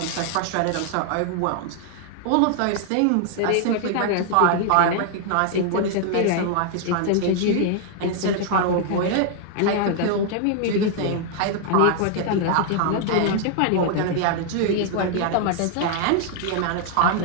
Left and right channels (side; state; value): both; different; correlation 0.00